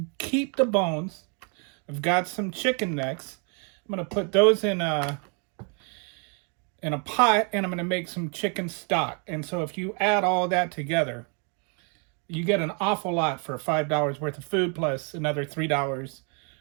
keep the bones. I've got some chicken necks. I'm gonna put those in a pot, and I'm gonna make some chicken stock. And so if you add all that together, you get an awful lot for $5 worth of food plus another $3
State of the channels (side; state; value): left; quieter; 37.8 dB